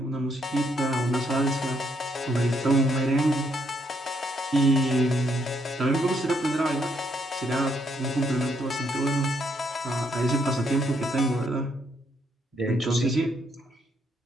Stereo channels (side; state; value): both; normal; correlation 0.73